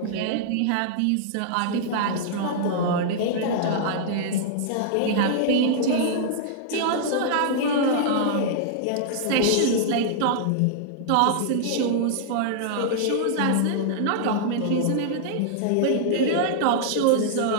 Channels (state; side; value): different; both; correlation -0.01